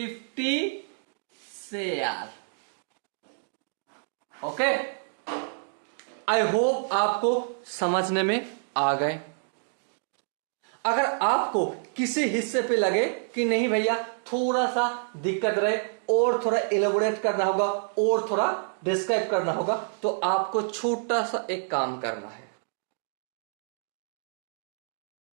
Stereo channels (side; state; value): left; silent; digital silence